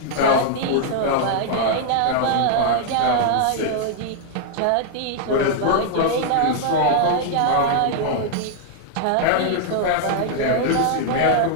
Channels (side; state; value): both; different; correlation -0.01